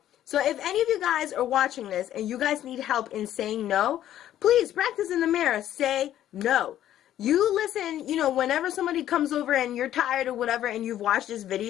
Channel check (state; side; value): quieter; right; 12.0 dB